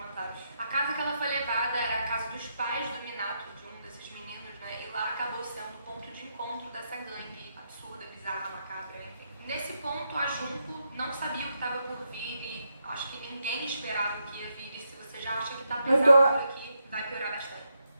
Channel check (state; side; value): inverted; both; correlation -0.83